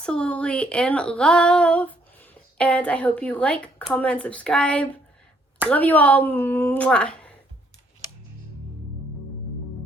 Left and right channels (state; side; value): normal; both; correlation 0.68